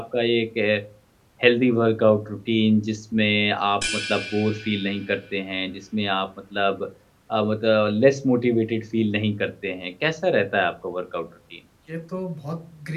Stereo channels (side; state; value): both; identical; correlation 1.00